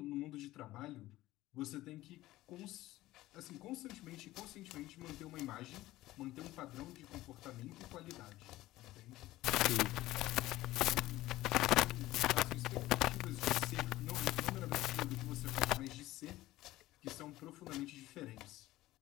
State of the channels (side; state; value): right; quieter; 16.6 dB